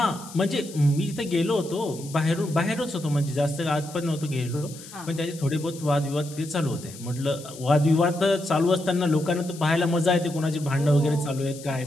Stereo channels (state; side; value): noise; left; hiss, 17 dB below the sound